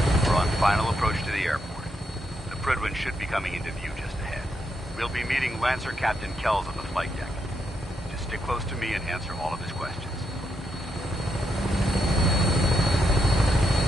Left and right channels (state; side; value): normal; both; correlation 0.80